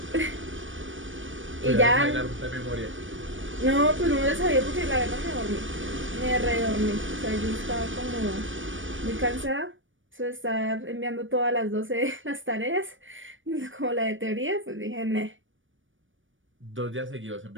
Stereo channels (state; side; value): late; left; 0.57 ms